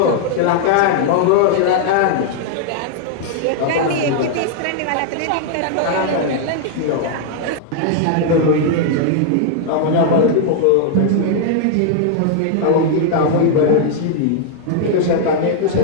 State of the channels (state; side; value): different; both; correlation 0.00